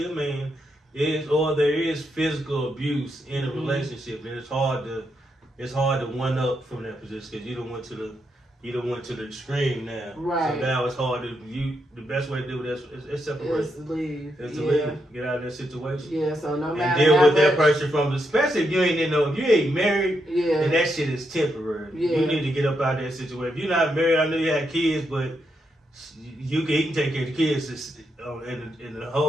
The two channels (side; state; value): both; normal; correlation 0.81